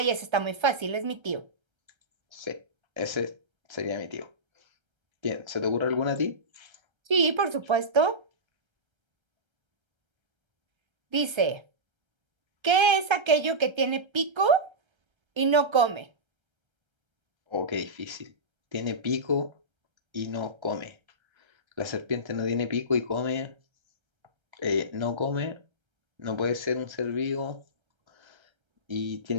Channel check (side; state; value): left; late; 1.3 ms